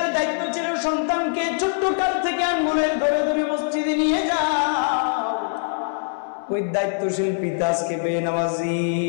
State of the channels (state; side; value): silent; right; 61 dB below the other